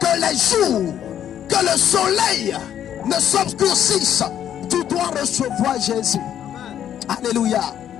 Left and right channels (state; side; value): quieter; right; 10.1 dB